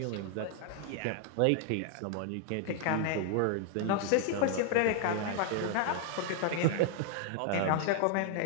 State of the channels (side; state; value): both; different; correlation 0.00